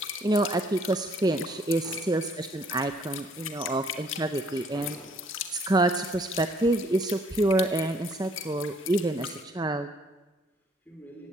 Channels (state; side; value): normal; both; correlation 0.62